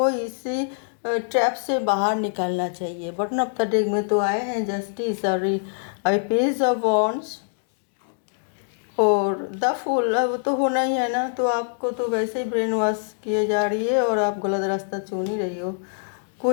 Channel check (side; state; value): right; silent; digital silence